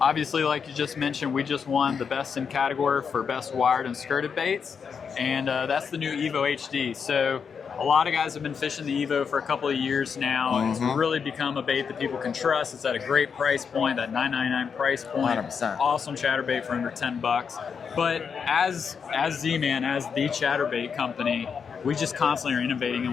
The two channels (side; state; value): right; quieter; 6.4 dB